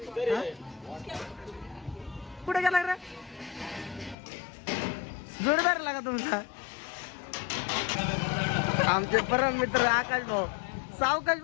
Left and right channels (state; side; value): drops out; right; at 4.2 s